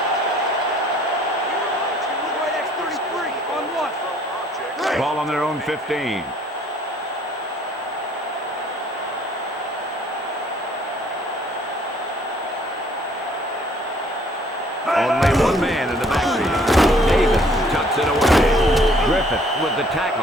Ball on their own 15. Only one man in the backfield. Davis tucks it away. Griffith with the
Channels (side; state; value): both; normal; correlation 0.59